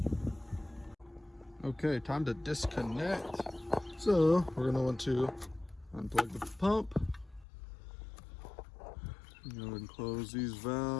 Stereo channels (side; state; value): right; drops out; at 7.5 s